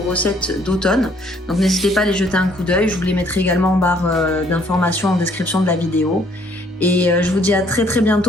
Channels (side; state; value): both; normal; correlation 0.63